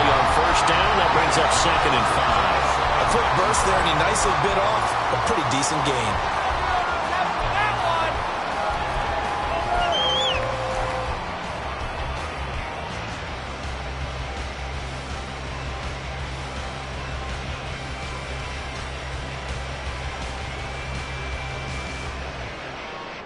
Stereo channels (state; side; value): identical; both; correlation 1.00